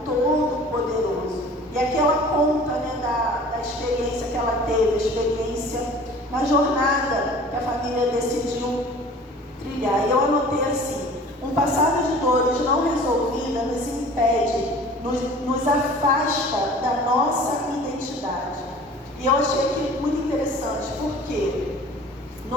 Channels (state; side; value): normal; both; correlation 0.45